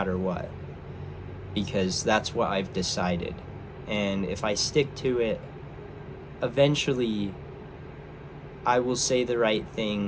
what, because that's what I've decided. And if I stick to it, eventually I will say the right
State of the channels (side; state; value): both; identical; correlation 1.00